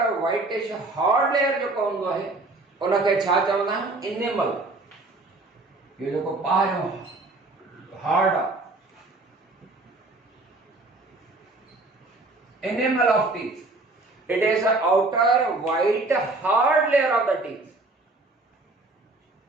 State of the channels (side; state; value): left; quieter; 3.1 dB